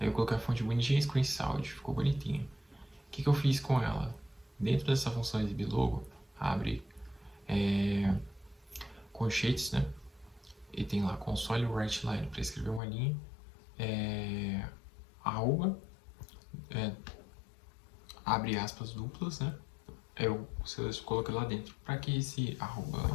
eu coloquei a fonte bonitinha, screenshot, ficou bonitinha. O que eu fiz com ela? Dentro dessa função exibir logo, abre colchetes, né? E tem lá console write line para escrever uma linha, arroba, abre aspas duplas, né? Eu coloquei lá dentro. Para que esse arroba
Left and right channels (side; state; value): right; drops out; at 12.8 s